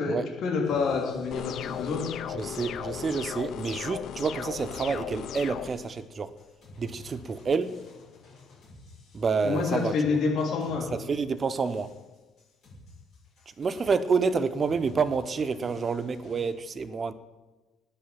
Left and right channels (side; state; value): both; normal; correlation 0.74